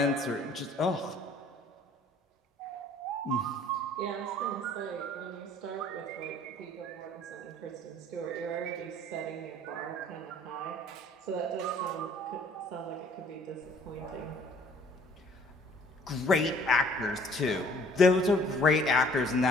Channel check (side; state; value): both; normal; correlation 0.56